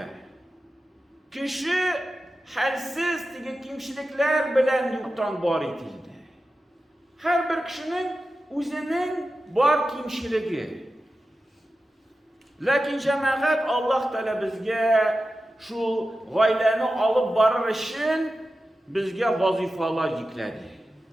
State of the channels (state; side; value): normal; both; correlation 0.93